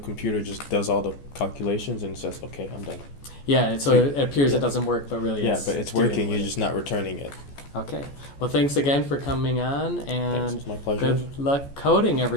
just does all the calculations and says, okay, I'm done. Yeah, so So it appears yeah. it doesn't work, but really Yeah, it's but it's doing working, what you're it- just not returning it. Okay. Well, thanks again for coming on, Thanks, and it's my pleasure. good luck coding,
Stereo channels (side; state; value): right; late; 14 ms